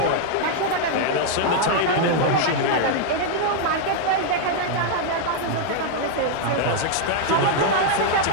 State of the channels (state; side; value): different; both; correlation 0.00